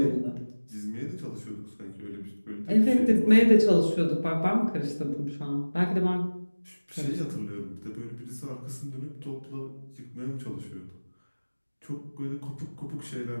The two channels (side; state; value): both; inverted; correlation -1.00